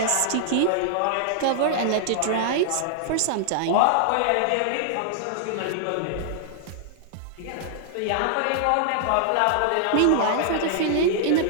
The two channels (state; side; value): different; both; correlation -0.01